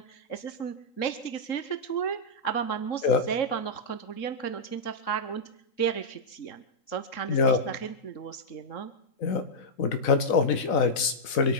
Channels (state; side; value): late; right; 4.0 ms